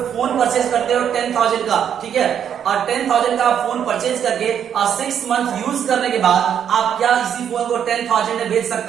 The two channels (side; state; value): left; quieter; 8.8 dB